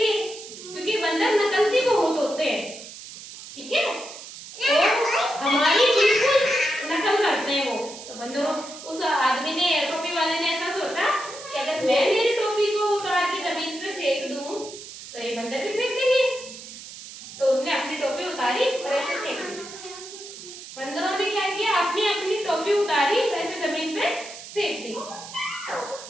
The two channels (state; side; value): noise; right; hiss, 14 dB below the sound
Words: क्योंकि बंदर नकलची बहुत होते हैं, ठीक है? तो हमारी बिल्कुल नकल करते हैं वो। तो बंदरों, उस आदमी ने, टोपी वाले ने ऐसा सोचा कि अगर मैं मेरी टोपी को उतार के जमीन पे फेंक दूं तो ये बंदर भी फेंक देंगे। तो उसने अपनी टोपी उतारी और ऐसे फेंक दी। बंदरों ने क्या किया, अपनी अपनी टोपी उतारी